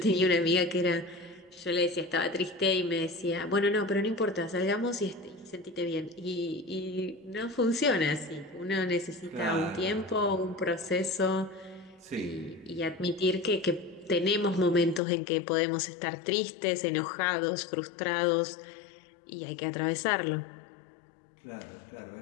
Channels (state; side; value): drops out; right; at 15.0 s